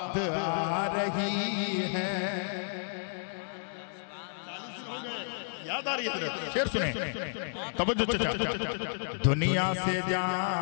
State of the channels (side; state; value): right; silent; digital silence